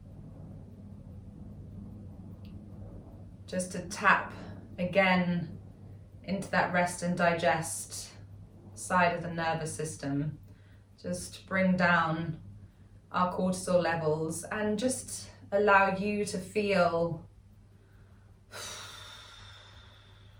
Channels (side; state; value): both; identical; correlation 1.00